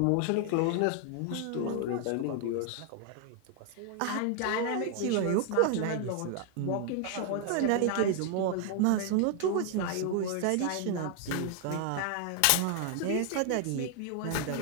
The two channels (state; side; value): different; both; correlation 0.00